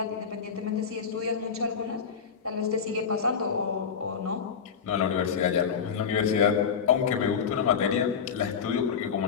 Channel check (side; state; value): right; quieter; 6.7 dB